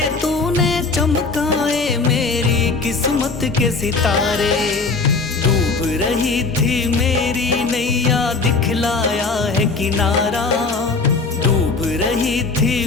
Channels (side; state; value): right; quieter; 4.0 dB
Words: तूने चमकाए मेरी किस्मत के सितारे। डूब रही थी मेरी नैया दिखलाया है किनारा। डूब रही थी